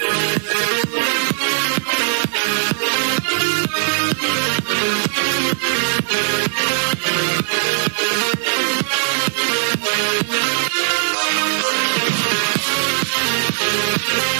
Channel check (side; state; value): left; silent; digital silence